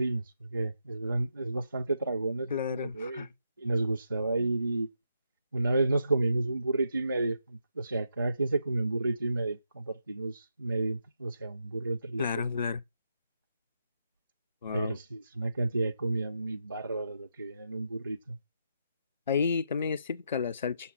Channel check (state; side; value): inverted; both; correlation -0.82